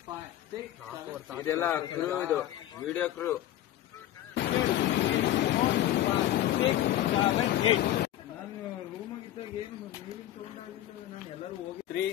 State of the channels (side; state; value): right; quieter; 13.1 dB